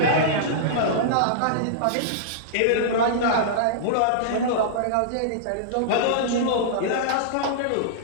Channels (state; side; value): different; both; correlation -0.03